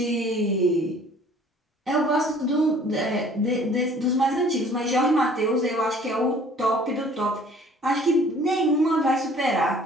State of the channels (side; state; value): both; normal; correlation 0.53